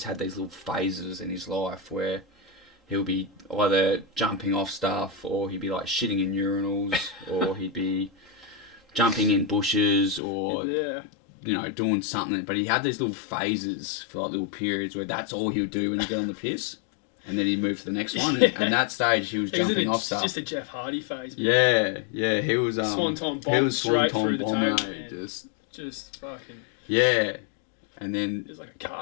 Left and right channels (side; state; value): right; drops out; at 10.2 s